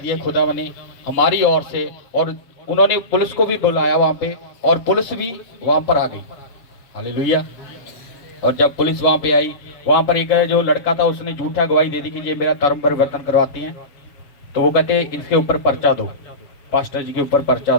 खुदा ने हमारी ओर से, और उन्होंने पुलिस को भी बुलाया वहाँ पे, और पुलिस भी वहाँ पर आ गई। हालेलुया। और जब पुलिस वहाँ पे आई, वहाँ पर एक जो लड़का था उसने झूठा गवाही दे दी कि ये मेरा धर्म परिवर्तन करवाती हैं, तो वो कहते इनके ऊपर पर्चा दो, पास्टर जी के ऊपर पर्चा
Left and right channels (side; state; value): right; late; 7.0 ms